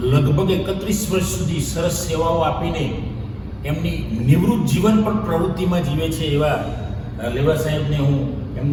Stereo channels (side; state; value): both; identical; correlation 1.00